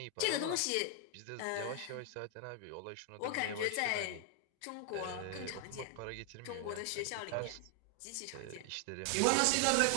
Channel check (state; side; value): different; both; correlation 0.00